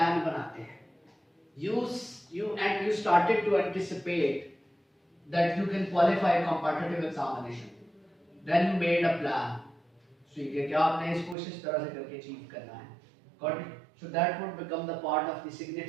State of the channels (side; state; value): left; drops out; at 11.4 s